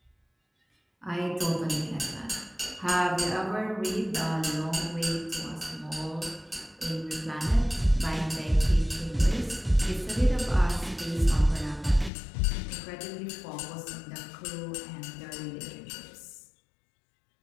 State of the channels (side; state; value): right; drops out; at 12.1 s